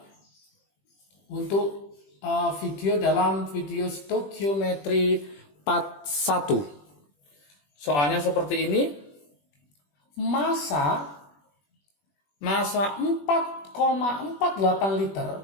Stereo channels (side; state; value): right; late; 21 ms